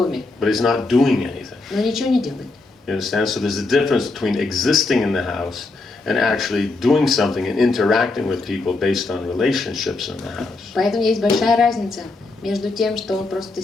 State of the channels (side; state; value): right; quieter; 3.4 dB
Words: but he's not doing anything. но ничего не делает. You understand? So there's a difference between existing in the house and actually doing something and interacting with people based on relationships in the house. Поэтому есть большая разница между тем, что он просто